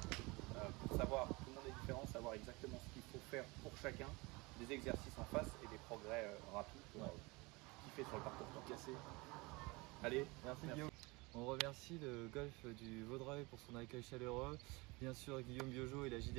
pour savoir, tout le monde est différent, savoir exactement ce qu'il faut faire pour chacun, des exercices en face et des progrès rapides pour kiffer sur le parcours cassé. Allez, merci Guillaume. On remercie le golf du Vaudreuil pour son accueil chaleureux, bien sûr Guillaume Biojo et la JD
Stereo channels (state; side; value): quieter; left; 25.0 dB